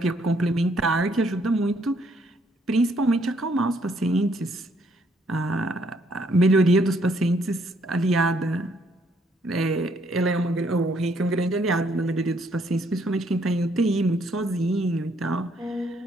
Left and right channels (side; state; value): both; normal; correlation 0.69